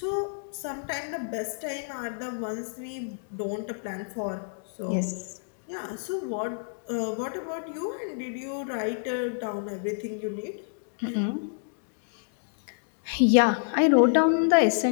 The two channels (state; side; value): silent; right; digital silence